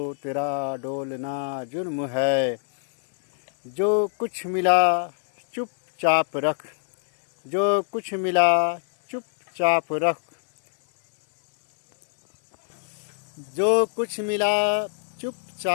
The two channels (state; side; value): silent; right; digital silence